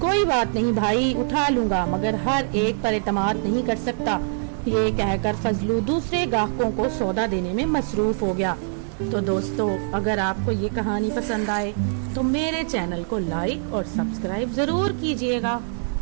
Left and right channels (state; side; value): silent; left; digital silence